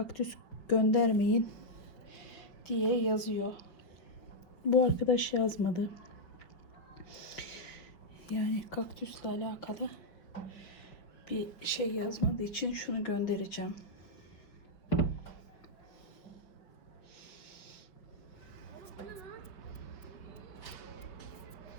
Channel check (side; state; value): right; late; 5.4 ms